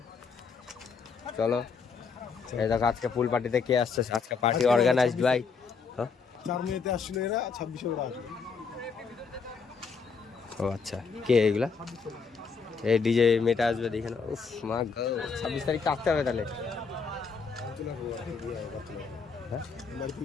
চলো। এই দেখো আজকে ফুল পার্টিতে কে আসছে, আজকে পার্টি অর্গানাইজড ভাই। 4 মেতে আসছিল এরা, 26 ওরা আসবে। ও আচ্ছা, কে এগুলা? এই ডিজে মেটা আসবে দেখে না। উফ মা গো, 26 তারিখ আসতে হবে তাহলে। হ্যাঁ বাড়ি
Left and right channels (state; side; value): quieter; right; 5.3 dB